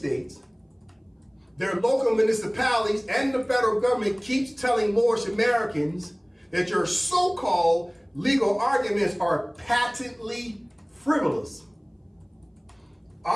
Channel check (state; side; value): identical; both; correlation 1.00